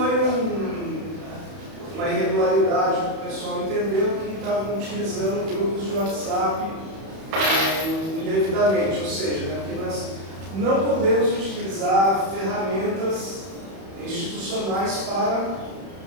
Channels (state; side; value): late; left; 31 ms